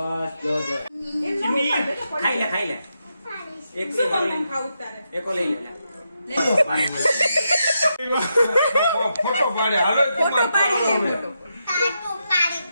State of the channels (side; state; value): both; inverted; correlation -0.84